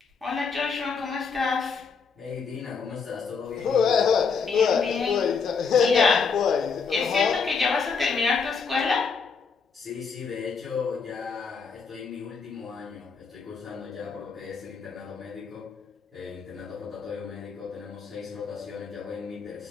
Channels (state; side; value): quieter; right; 5.5 dB